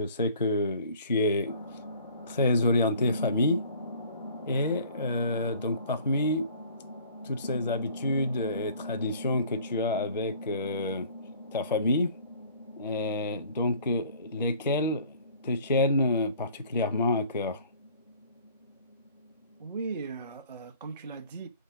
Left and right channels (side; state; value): both; inverted; correlation -0.51